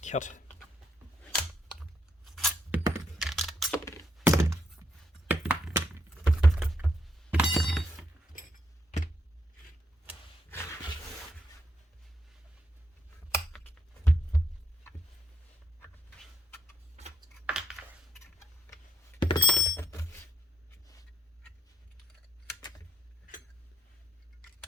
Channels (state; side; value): normal; both; correlation 0.77